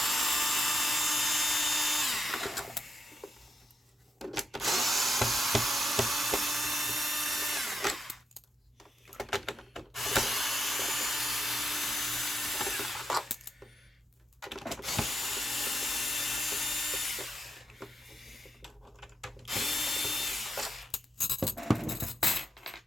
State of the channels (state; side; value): normal; both; correlation 0.84